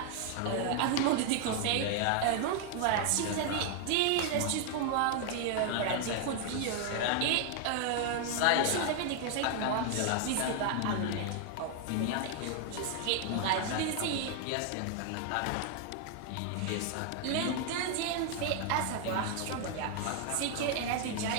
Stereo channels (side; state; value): both; different; correlation 0.00